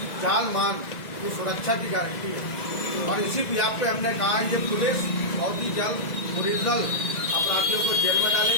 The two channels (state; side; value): late; right; 2.0 ms